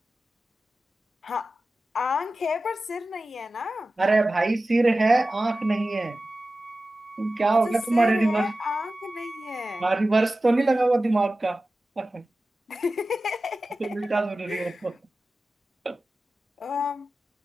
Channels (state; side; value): normal; both; correlation 0.95